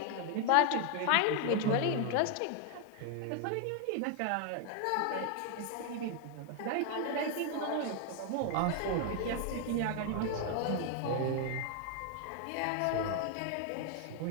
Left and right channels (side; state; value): both; different; correlation 0.00